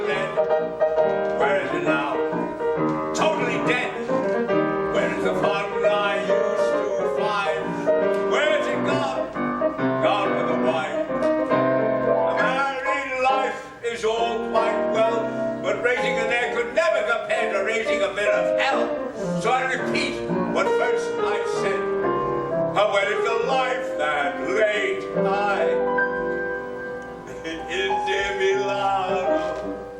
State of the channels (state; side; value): identical; both; correlation 1.00